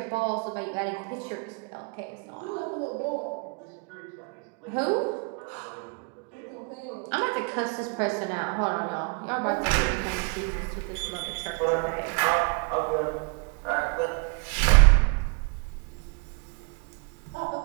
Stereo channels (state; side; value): quieter; left; 34.7 dB